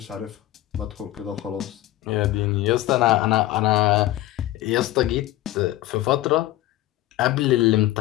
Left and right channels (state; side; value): quieter; right; 15.6 dB